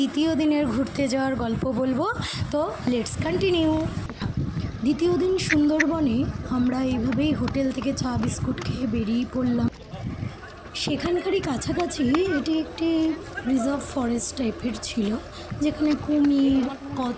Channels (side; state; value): both; identical; correlation 1.00